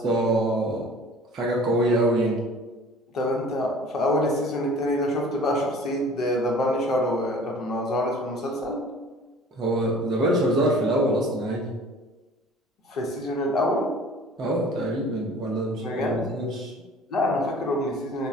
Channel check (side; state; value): both; normal; correlation 0.47